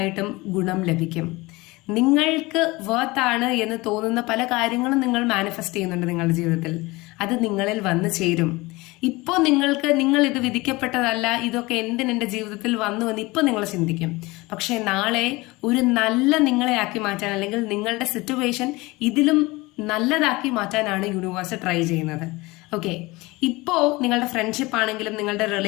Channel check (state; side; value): quieter; right; 22.3 dB